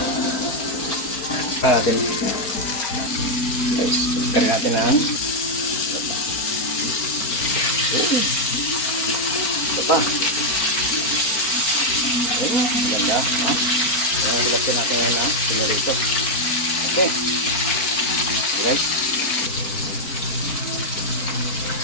Natin guys, tarin natin ang ito pa ganda, ilapin natin ngayon na pinarito. Okay guys,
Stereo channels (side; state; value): right; late; 4.4 ms